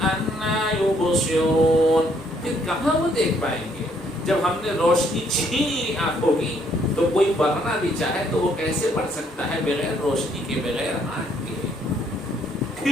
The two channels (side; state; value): both; normal; correlation 0.68